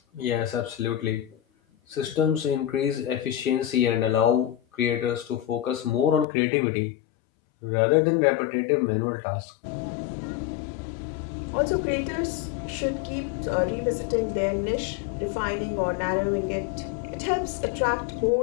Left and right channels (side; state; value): right; drops out; at 6.2 s